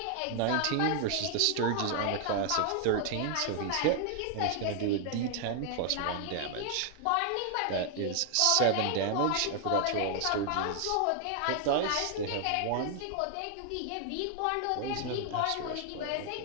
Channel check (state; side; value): different; both; correlation 0.00